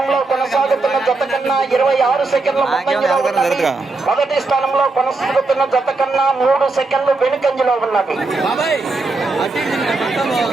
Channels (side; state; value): left; quieter; 3.5 dB